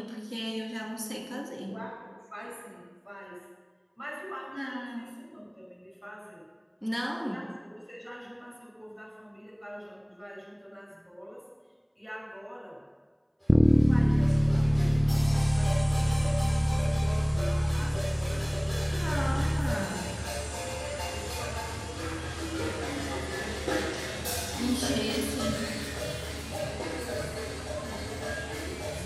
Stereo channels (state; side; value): identical; both; correlation 1.00